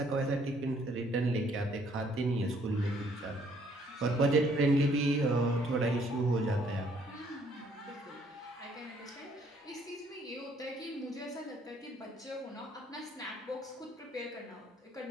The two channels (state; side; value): normal; both; correlation 0.64